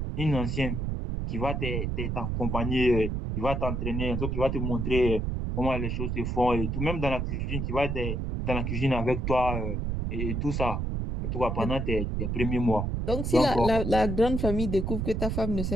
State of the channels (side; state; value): right; noise; rumble, 1 dB below the sound